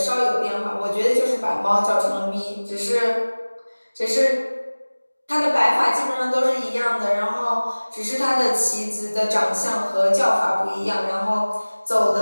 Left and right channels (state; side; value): inverted; both; correlation -1.00